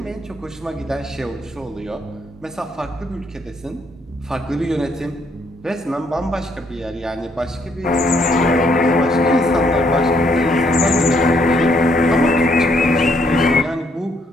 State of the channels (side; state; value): both; normal; correlation 0.70